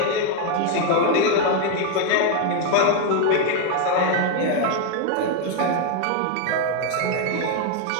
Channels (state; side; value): different; both; correlation 0.01